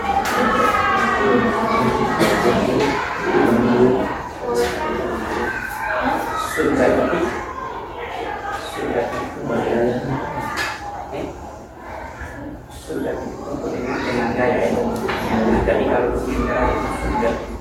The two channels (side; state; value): both; identical; correlation 1.00